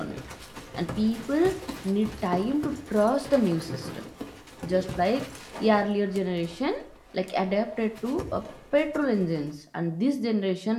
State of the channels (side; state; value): both; identical; correlation 1.00